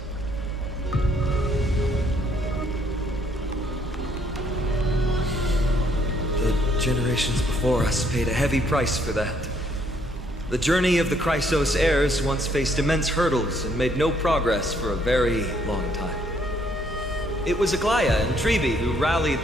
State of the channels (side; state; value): both; normal; correlation 0.68